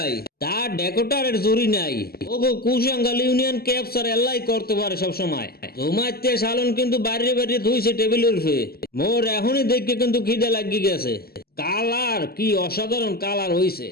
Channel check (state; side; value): late; right; 0.45 ms